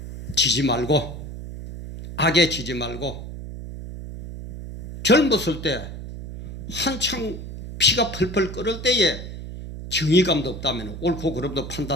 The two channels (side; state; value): right; noise; hum, 10 dB below the sound